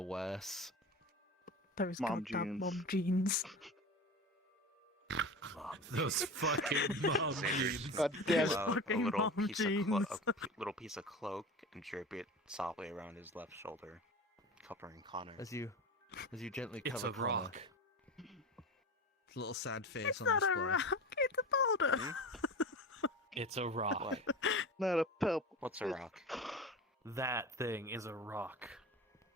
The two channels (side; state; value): both; normal; correlation 0.30